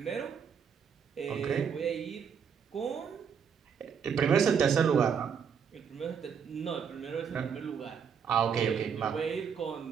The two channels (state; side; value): quieter; left; 7.0 dB